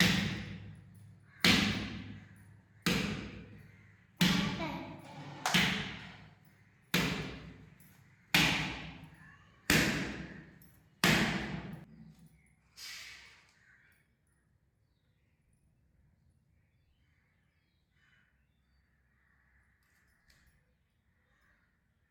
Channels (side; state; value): both; identical; correlation 1.00